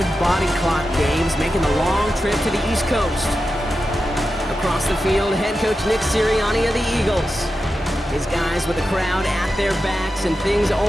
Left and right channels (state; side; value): normal; both; correlation 0.90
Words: body clock games, making the long trip to the East Coast. Across the field, head coach Nick Sirianni of the Eagles. His guys with the crowd at their backs, and things